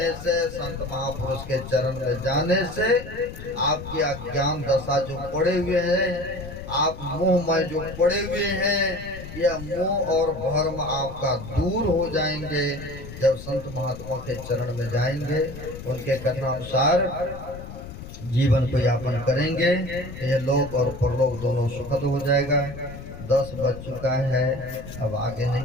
से, संत महापुरुष के चरण में जाने से। आपकी अज्ञान दशा जो पड़े हुए हैं, आप मोह में जो पड़े हुए हैं, यह मोह और भ्रम आपका दूर हो जाएंगे जब संत महात्मा के चरण में जाएंगे, उनके कथनानुसार जीवन को यापन करेंगे। ये लोक और परलोक दोनों सुखद हो जाएगा। 10 बज चुका है, अब आगे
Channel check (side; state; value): left; noise; rumble, 12 dB below the sound